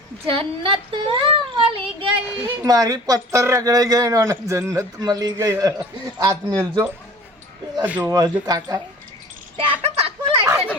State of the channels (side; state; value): both; normal; correlation 0.44